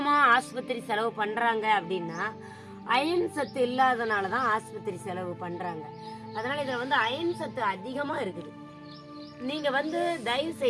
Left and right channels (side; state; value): both; identical; correlation 1.00